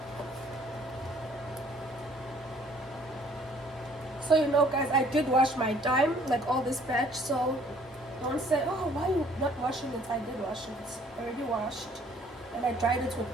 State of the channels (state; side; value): normal; both; correlation 0.59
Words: So you know guys, I did wash my dime, like all this batch, so don't say, oh, why are you not washing it? I did wash it. I already washed. And I dried it with